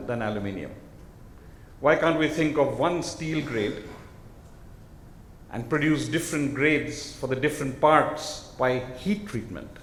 than aluminium. Why can't we think of one steel grade and produce different grades for the different parts by heat treatment?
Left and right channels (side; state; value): both; identical; correlation 1.00